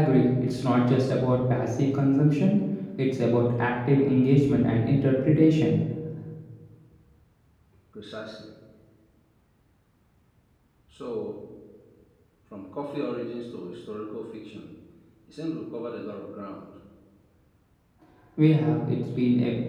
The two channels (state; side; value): identical; both; correlation 1.00